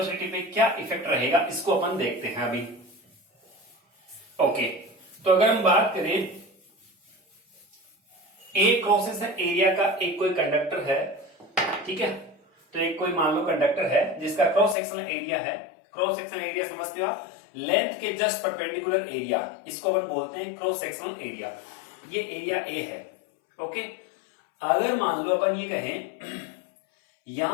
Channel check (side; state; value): right; drops out; at 14.8 s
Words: पे क्या इफेक्ट रहेगा, इसको अपन देखते हैं अभी। ओके, तो अगर हम बात करें ए क्रॉस सेक्शन एरिया का, एक कोई कंडक्टर है, ठीक है, तो एक कोई मान लो कंडक्टर है जिसका क्रॉस सेक्शनल एरिया है, क्रॉस सेक्शनल एरिया समझते हो आप, लेंथ के जस्ट परपेंडिकुलर एरिया, इसको अपन बोलते हैं क्रॉस सेक्शनल एरिया। ये एरिया ए है। ओके, अगर मान लो अपन ये कहें